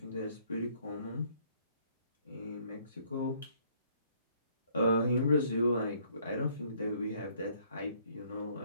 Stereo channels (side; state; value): both; inverted; correlation -0.64